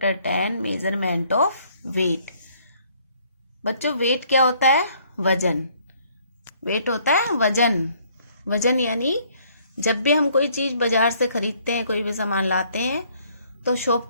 10 measurement of weight. बच्चों wait क्या होता है? वजन. वेट होता है वजन. वजन यानी जब भी हम कोई चीज बाजार से खरीदते हैं, कोई भी सामान लाते हैं तो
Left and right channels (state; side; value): inverted; both; correlation -0.63